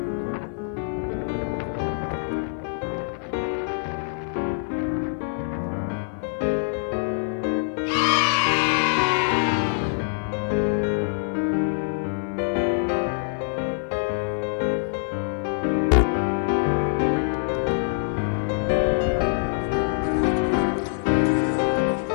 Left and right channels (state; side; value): silent; right; 55 dB below the other